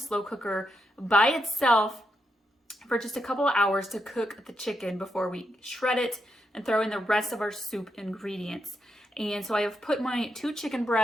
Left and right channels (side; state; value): both; normal; correlation 0.82